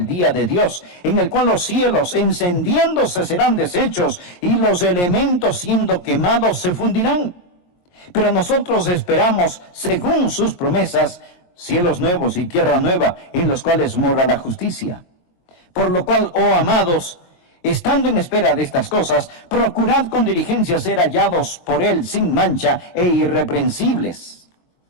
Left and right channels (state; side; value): late; right; 22 ms